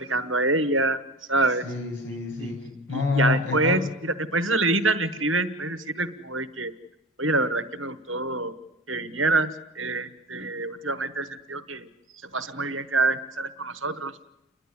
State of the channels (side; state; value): both; normal; correlation 0.34